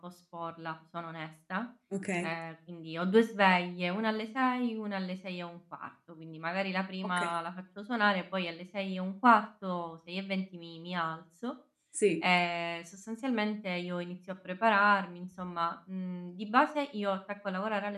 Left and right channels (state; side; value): identical; both; correlation 1.00